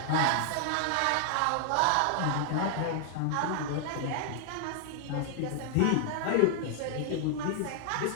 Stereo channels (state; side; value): different; both; correlation 0.00